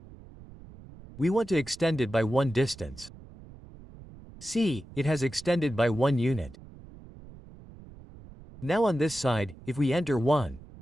We want to extend it by 1 distance. See, it has extended by 1 unit. Now on this side, if we enter 1,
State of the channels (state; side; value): noise; right; rumble, 19 dB below the sound